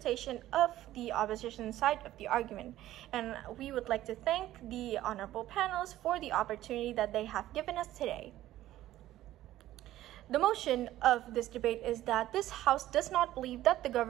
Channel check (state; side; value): quieter; left; 14.2 dB